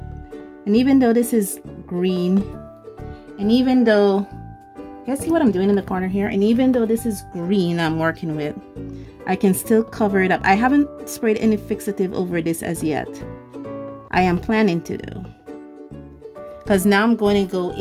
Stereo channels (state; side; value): identical; both; correlation 1.00